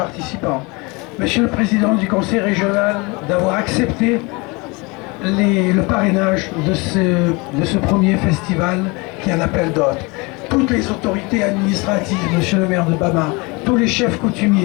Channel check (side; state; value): right; quieter; 27.0 dB